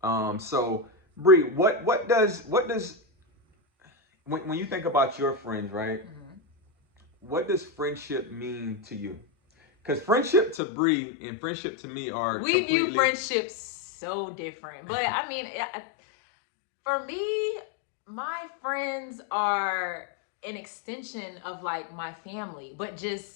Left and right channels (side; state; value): right; drops out; at 10.6 s